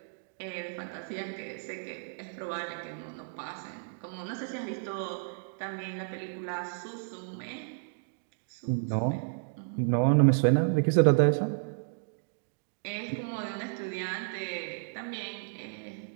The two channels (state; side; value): silent; left; digital silence